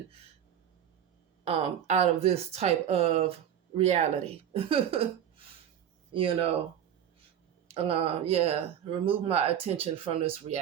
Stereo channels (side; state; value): left; quieter; 9.7 dB